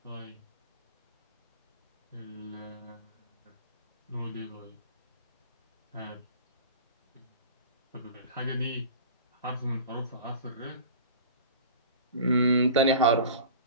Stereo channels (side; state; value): both; inverted; correlation -0.37